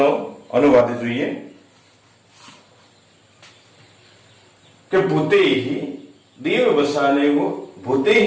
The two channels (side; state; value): both; identical; correlation 1.00